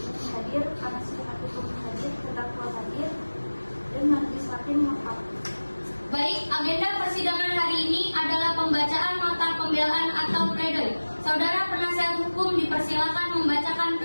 hadir, penasihat hukum hadir, terdakwa hadir, dan majelis hakim lengkap. Baik, agenda persidangan hari ini adalah pembacaan nota pembelaan atau pledoi. Saudara penasihat hukum dipersilakan membacakan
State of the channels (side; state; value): both; inverted; correlation -1.00